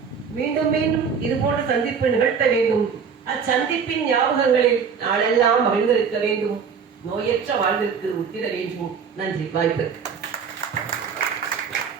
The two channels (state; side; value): quieter; left; 6.4 dB